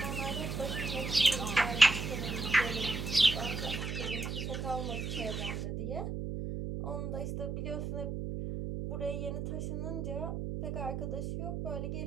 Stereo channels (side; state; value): right; noise; hum, 3 dB below the sound